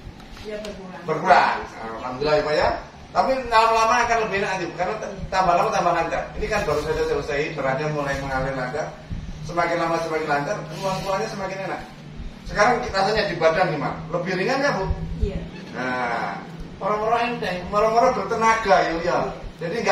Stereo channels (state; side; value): identical; both; correlation 1.00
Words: berkurang. berkurang. Alhamdulillah ya Pak ya. Tapi lama-lama akan lebih enak nanti karena tambah lama tambah lancar. Ini kan baru saja selesai, beratnya mulai mengalir lancar. Semakin lama semakin lancar, keluarnya semakin enak. Sekarang rasanya di badan gimana? Lebih ringan ya Bu? Iya. Nah, orang-orang enteng, orang-orang bertenaga ya. Jadi